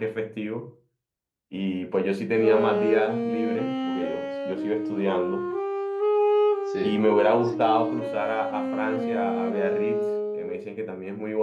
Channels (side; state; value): both; identical; correlation 1.00